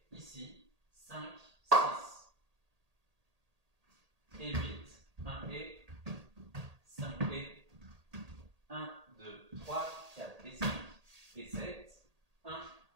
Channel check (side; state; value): left; late; 1.8 ms